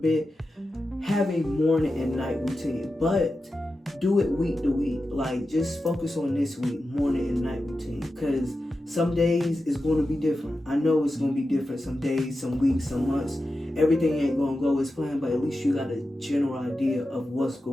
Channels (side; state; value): both; normal; correlation 0.91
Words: have a morning and night routine, but do it week to week. Like, just focus on this week, morning and night routine, because some days it's going to be different. I know it's going to be different some days, some weeks, some months. Everything ain't going to go as planned, but at least you got a general idea of what's